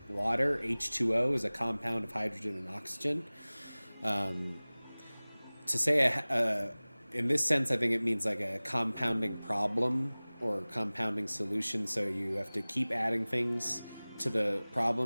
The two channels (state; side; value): inverted; both; correlation -1.00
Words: water. H2O is a compound of hydrogen and oxygen. To say in this sense, I think it means like a compounding problem or compounding solution. So you have to keep adding things to the